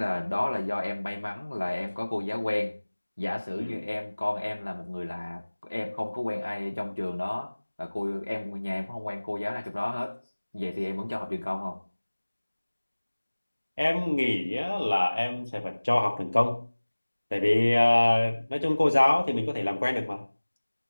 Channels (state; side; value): inverted; both; correlation -1.00